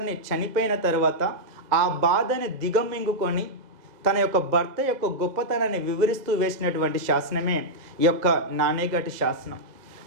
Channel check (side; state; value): left; late; 2.0 ms